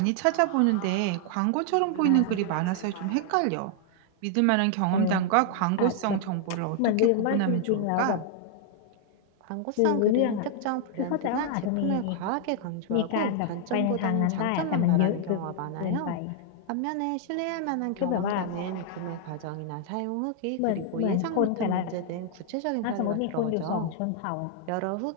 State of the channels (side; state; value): both; different; correlation 0.00